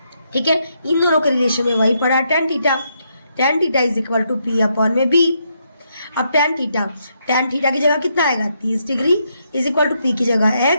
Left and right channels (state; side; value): inverted; both; correlation -0.78